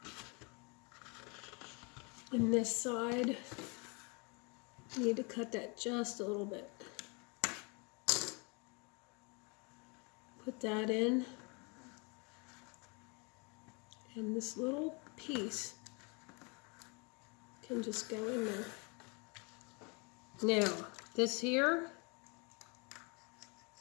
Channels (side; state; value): right; quieter; 31.5 dB